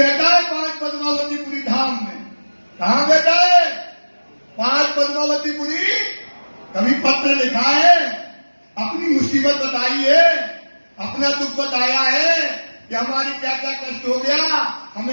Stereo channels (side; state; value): both; inverted; correlation -1.00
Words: है 5 पद्मावतीपुरी धाम में। कहाँ बैठा है? 5 पद्मावतीपुरी। कभी पत्र लिखा है? अपनी मुसीबत बताई है, अपना दुख बताया है कि हमारी क्या क्या कष्ट हो गया,